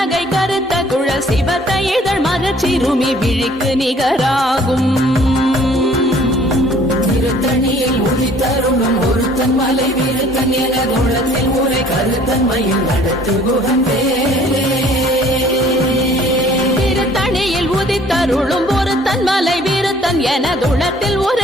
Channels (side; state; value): both; normal; correlation 0.56